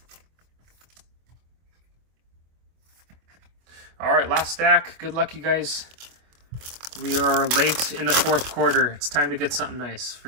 All right, last stack. Good luck, you guys. We are late in the fourth quarter. It's time to get something nice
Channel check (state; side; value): late; left; 25 ms